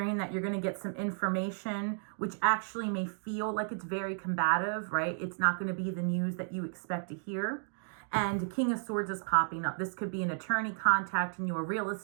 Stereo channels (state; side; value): silent; left; digital silence